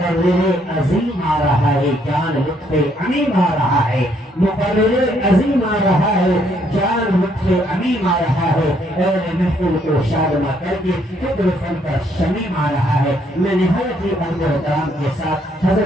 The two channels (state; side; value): normal; both; correlation 0.69